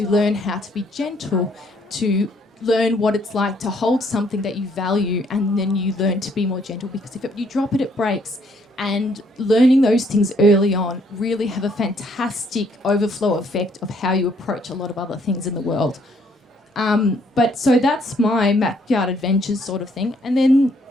learn how to be gentle, to learn what it's like to hold something that you value, and then you learn to be more gentle, because if you drop it, it breaks. And learning those things early on really have a fantastic overflow effect of how you approach a lot of other things in the world. But so that's my backyard adventures sort of thing, and then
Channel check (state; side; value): normal; both; correlation 0.67